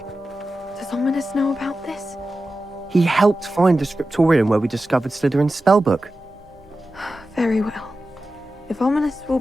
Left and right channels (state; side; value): normal; both; correlation 0.93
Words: Does Ominous know about this? He helped find the scriptorium where we discovered Slytherin's spellbook. Very well. If Ominous will